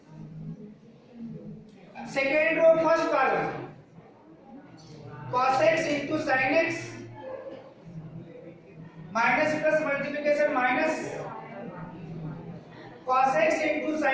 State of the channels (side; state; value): both; identical; correlation 1.00